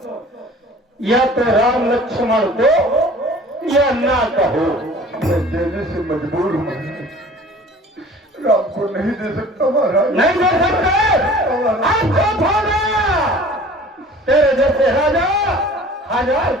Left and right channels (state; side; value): normal; both; correlation 0.46